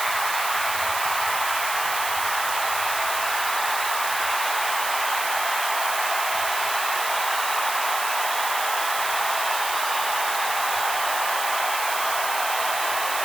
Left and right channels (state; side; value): noise; right; hiss, 4 dB below the sound